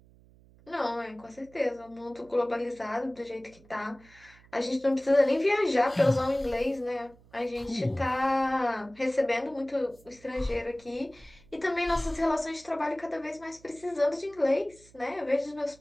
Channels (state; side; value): noise; right; hum, 26 dB below the sound